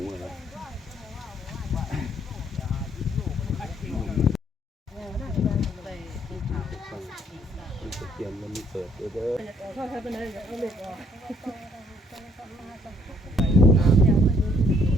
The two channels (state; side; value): normal; both; correlation 0.66